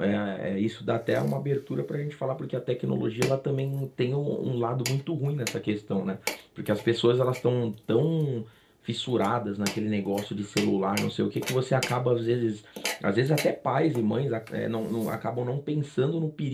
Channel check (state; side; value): identical; both; correlation 1.00